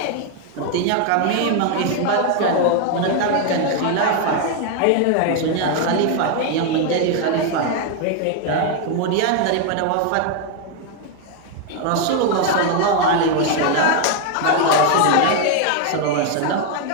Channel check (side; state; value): both; different; correlation 0.01